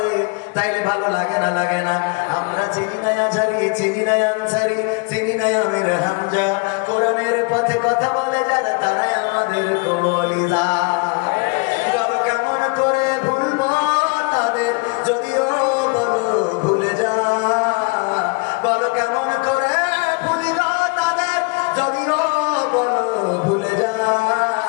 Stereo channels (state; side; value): quieter; right; 30.5 dB